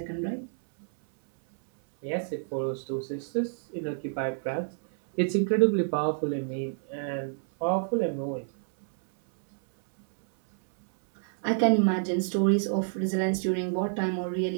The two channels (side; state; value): left; silent; 59 dB below the other